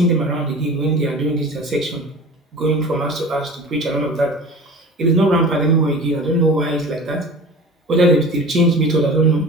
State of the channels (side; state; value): both; normal; correlation 0.38